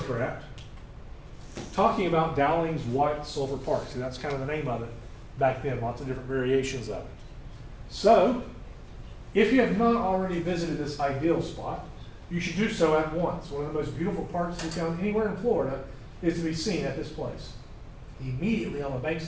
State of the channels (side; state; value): both; identical; correlation 1.00